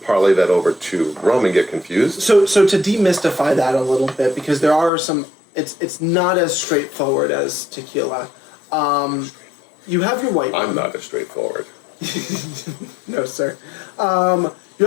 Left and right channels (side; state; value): right; drops out; at 4.9 s